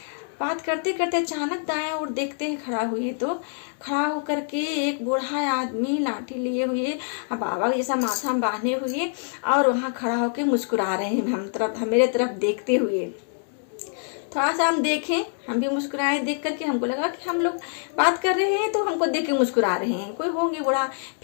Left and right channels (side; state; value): right; silent; 62 dB below the other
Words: बात करते करते अचानक दाएं और देखते हैं खड़ा हुए, तो खड़ा होकर के एक बूढ़ा आदमी लाठी लिए हुए, बाबा जैसा माथा बांधे हुए और वहाँ खड़ा होकर मुस्कुरा रहे हैं मेरे तरफ देखते हुए। थोड़ा सा हम देखें, हम भी मुस्कुराए, देख करके हमको लगा कि हम लोग बात कर रहे हैं तो हमको देख के मुस्कुरा रहे हैं, कोई होंगे बूढ़ा।